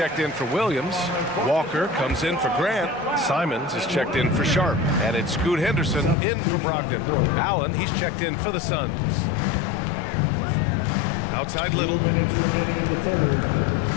in for Williams. Walker comes in for Grant. Simons is checked in for Sharp. And it's Scoot Henderson in for Brogdon. Allen, he's checked in for the Suns. Outside Little.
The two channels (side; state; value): right; drops out; at 6.2 s